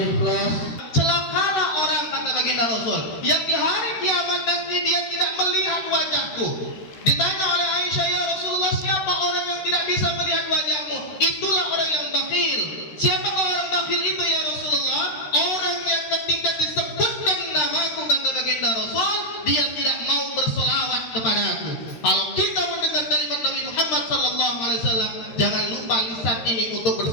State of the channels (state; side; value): late; right; 13 ms